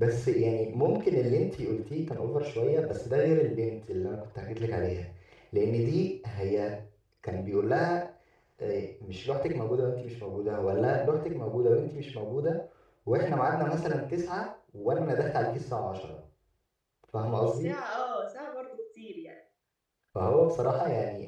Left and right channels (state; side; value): identical; both; correlation 1.00